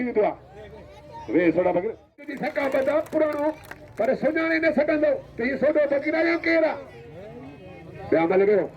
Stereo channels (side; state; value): both; identical; correlation 1.00